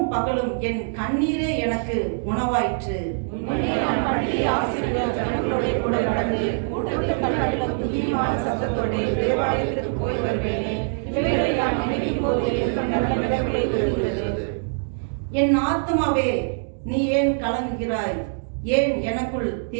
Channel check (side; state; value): left; silent; digital silence